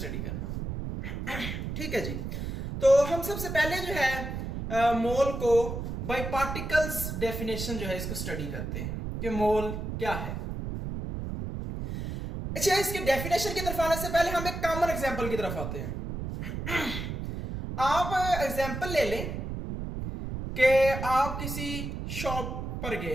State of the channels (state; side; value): noise; right; rumble, 5 dB below the sound